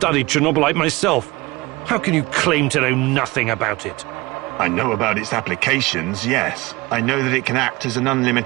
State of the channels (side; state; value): left; quieter; 21.9 dB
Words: Chernobylite myself. How can you claim to know nothing about it? I know about its applications, yes. I know that it can act as an